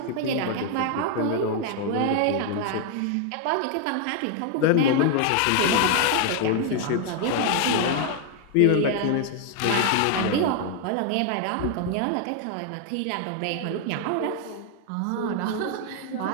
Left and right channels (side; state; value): both; different; correlation 0.00